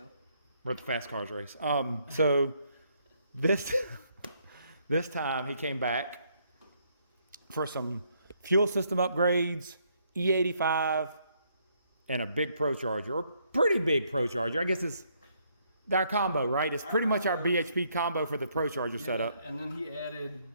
We're at the fast cars race. So this time he came back for some fuel system upgrades, E85, and a big ProCharger, or pretty big ProCharger. I guess it's our combo, right? It's pretty much our BHP combo for the ProCharger setup. And then he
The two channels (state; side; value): inverted; both; correlation -0.71